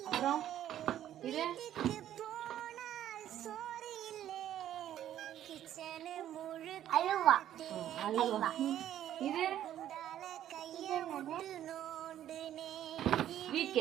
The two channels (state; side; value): quieter; left; 11.6 dB